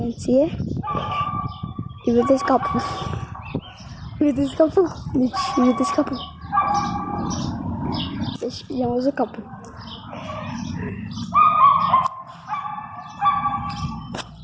îi vedeți capul. Vedeți capul? Deci, vedeți capul. Deci i-am văzut capul.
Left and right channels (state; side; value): identical; both; correlation 1.00